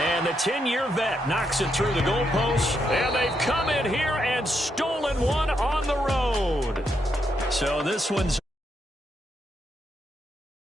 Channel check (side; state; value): both; normal; correlation 0.80